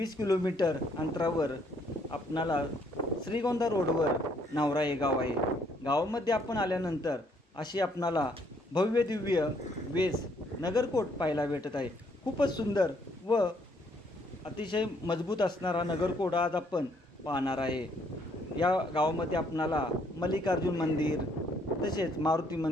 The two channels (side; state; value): both; normal; correlation 0.68